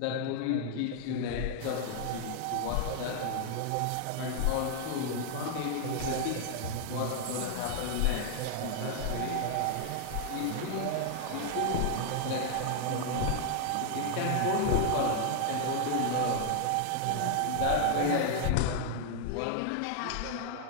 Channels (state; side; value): different; both; correlation 0.00